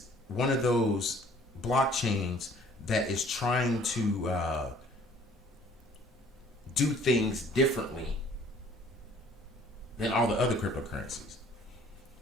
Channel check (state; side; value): normal; both; correlation 0.56